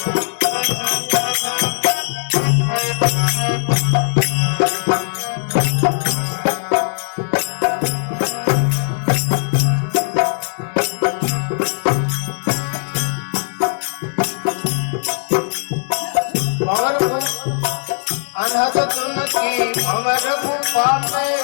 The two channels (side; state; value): right; silent; digital silence